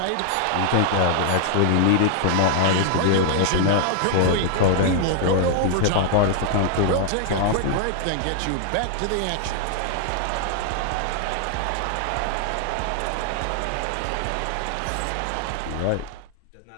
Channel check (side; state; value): both; different; correlation 0.00